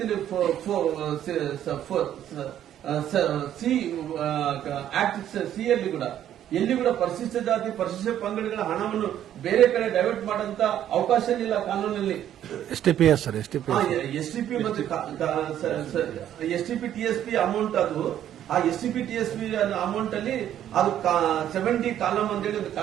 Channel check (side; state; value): left; quieter; 11.0 dB